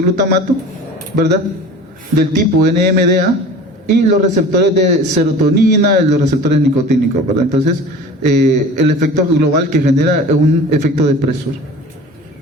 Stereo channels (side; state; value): both; normal; correlation 0.39